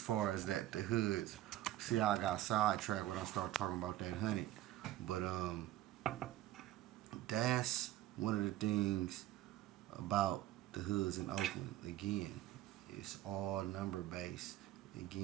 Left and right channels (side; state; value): left; quieter; 14.3 dB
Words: as that, the hoods. See how I got sidetracked when I started talking about that 100. But that's one of the things about the hoods in Oakland. Again, it's all number based.